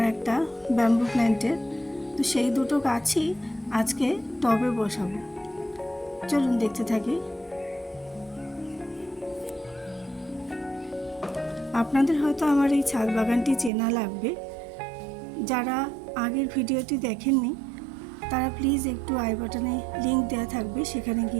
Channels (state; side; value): drops out; left; at 13.7 s